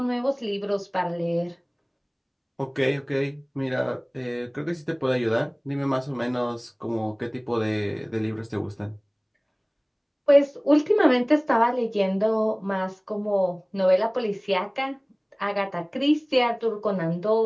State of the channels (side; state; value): both; identical; correlation 1.00